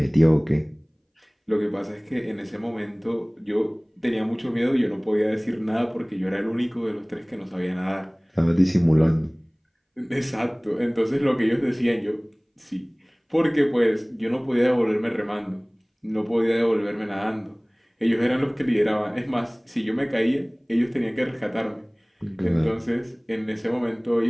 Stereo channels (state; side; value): identical; both; correlation 1.00